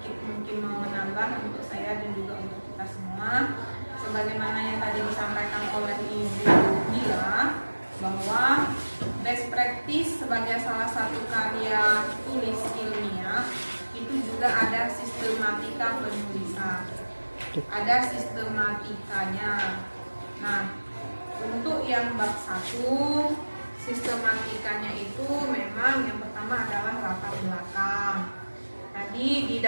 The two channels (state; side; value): inverted; both; correlation -1.00